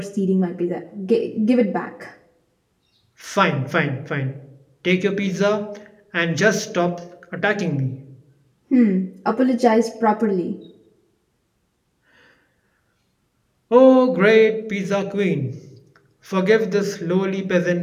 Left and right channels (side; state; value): both; identical; correlation 1.00